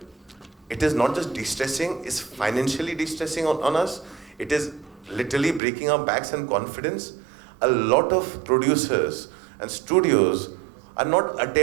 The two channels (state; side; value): drops out; left; at 5.6 s